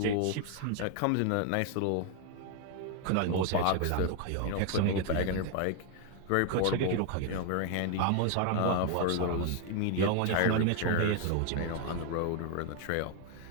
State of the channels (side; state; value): both; different; correlation 0.01